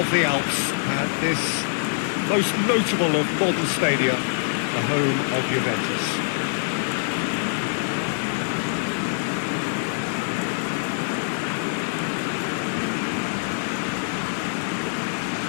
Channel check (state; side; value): silent; right; digital silence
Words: the Alps at this most notable of modern stadia, the home of Juventus.